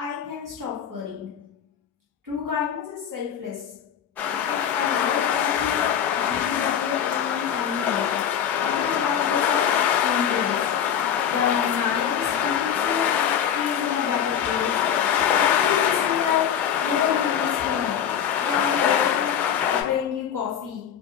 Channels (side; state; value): right; quieter; 8.8 dB